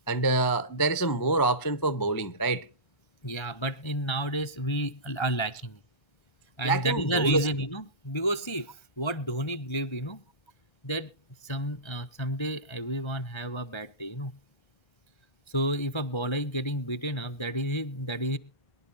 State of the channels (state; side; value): late; right; 1.3 ms